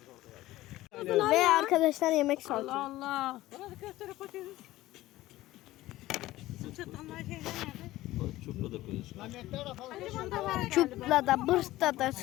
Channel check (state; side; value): quieter; right; 16.6 dB